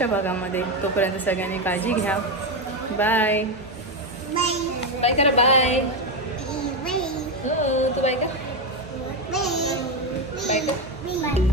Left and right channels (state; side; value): normal; both; correlation 0.09